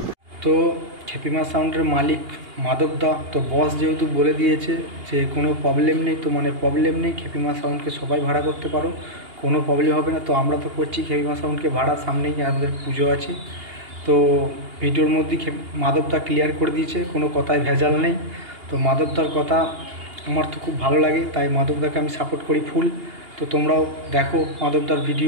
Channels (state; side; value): late; left; 2.8 ms